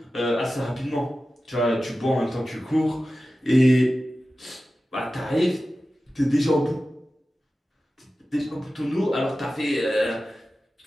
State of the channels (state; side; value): normal; both; correlation 0.94